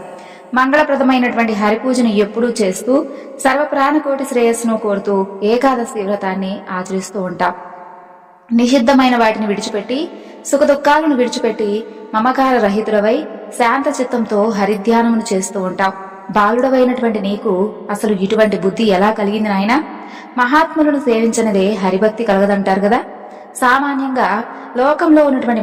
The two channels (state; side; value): identical; both; correlation 1.00